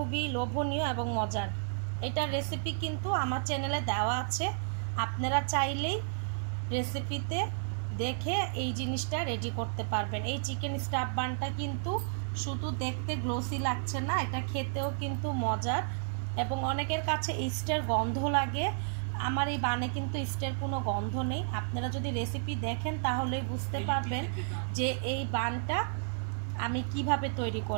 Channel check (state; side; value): silent; left; digital silence